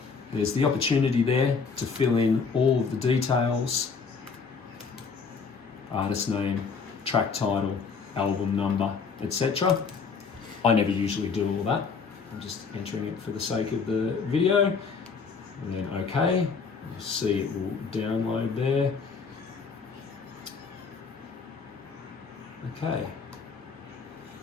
There's the opportunity there to fill in all of the details. Artist name, track title, album number, etc. I never usually do all that. I'm just entering it for the sake of the video. And then OK. You'll see it will download there. Okay.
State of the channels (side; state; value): right; quieter; 5.2 dB